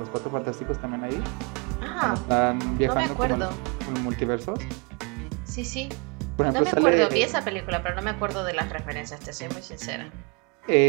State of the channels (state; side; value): quieter; left; 32.3 dB